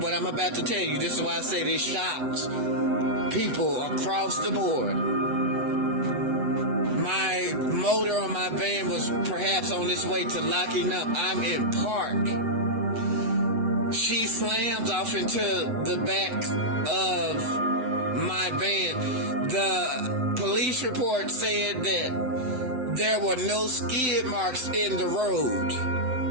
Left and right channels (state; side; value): late; left; 7.8 ms